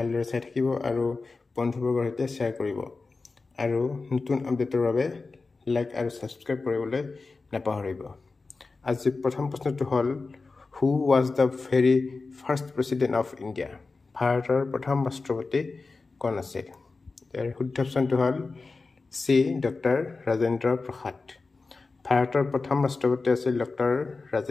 চাই থাকিব আৰু বন্ধুবৰ্গৰ সৈতে শ্বেয়াৰ কৰিব আৰু নতুন আপডেটৰ বাবে লাইক আৰু সাবস্ক্ৰাইব কৰিবলৈ নাপাহৰিব আজি প্ৰথম প্ৰশ্নটো হ'ল who was the very first president of India ভাৰতৰ প্ৰথম ৰাষ্ট্ৰপতি কোন আছিল শুদ্ধ অপশ্যনটো হ'ল চি ডক্টৰ ৰাজেন্দ্ৰ প্ৰসাদ ভাৰতৰ প্ৰথম ৰাষ্ট্ৰপতি আছিল ডক্টৰ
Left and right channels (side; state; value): right; quieter; 3.9 dB